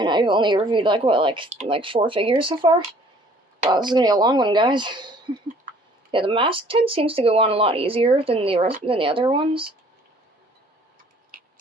I've only reviewed, 4 figures so far? Wow, this is gonna be a long one, guys. Yeah, the masked head seems to go on a lot easier than the other ones.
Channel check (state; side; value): normal; both; correlation 0.56